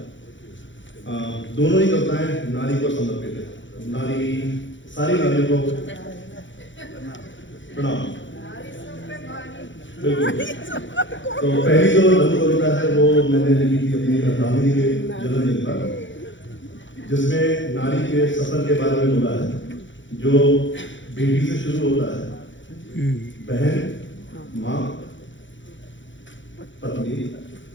दोनों ही कविताएं नारी को समर्पित है। नारी, सारी नारियों को प्रणाम। बिल्कुल। तो पहली जो लघु कविता है वो मैंने लिखी थी अपनी दामिनी के जन्मदिन पर, जिसमें नारी के सफर के बारे में बोला है, जो बेटी से शुरू होता है, बहन, माँ, पत्नी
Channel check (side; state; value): right; late; 0.55 ms